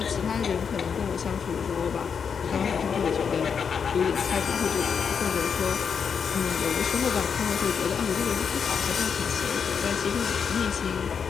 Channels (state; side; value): quieter; right; 6.6 dB